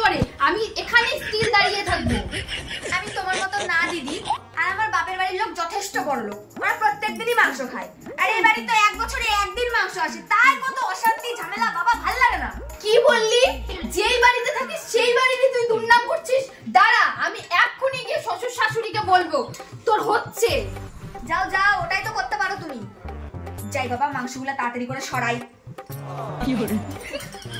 করে। আমি এখানে স্টিল দাঁড়িয়ে থাকবো। আমি তোমার মতো না দিদি, আর আমার বাপের বাড়ির লোক যথেষ্ট বড় লোক, ওরা প্রত্যেকদিনই মাংস খায়। আর এই বাড়ি তো এক বছরে একদিন মাংস আসে, তাই কত অশান্তি ঝামেলা, বাবা ভাল লাগে না। কি বললি? যেই বাড়িতে থাকিস সেই বাড়িতে তুই দুর্নাম করছিস? দাঁড়া আমি এক্ষুনি গিয়ে শ্বশুর শাশুড়িকে বলবো। তোর হচ্ছে। যাও যাও, ওটাই তো করতে পারো তুমি। যাই বাবা, মাংসগুলো তাড়াতাড়ি করে সরাই। কি হলো?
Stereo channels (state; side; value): identical; both; correlation 1.00